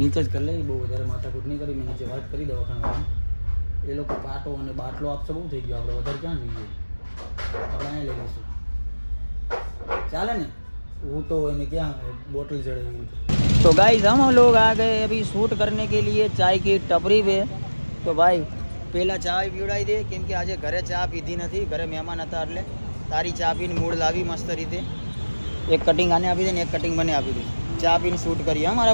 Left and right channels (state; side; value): inverted; both; correlation -1.00